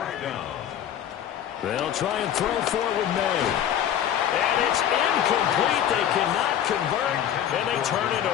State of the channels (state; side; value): quieter; right; 10.2 dB